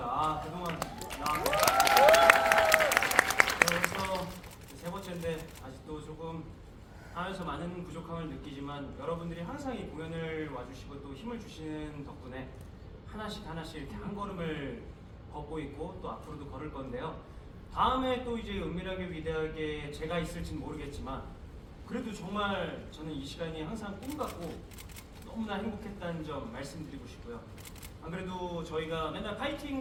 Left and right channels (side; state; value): both; identical; correlation 1.00